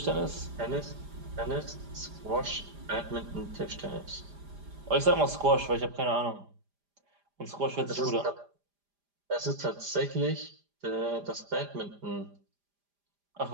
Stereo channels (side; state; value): left; late; 5.0 ms